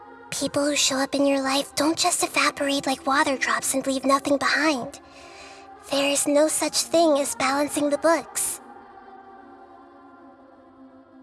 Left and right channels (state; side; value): identical; both; correlation 1.00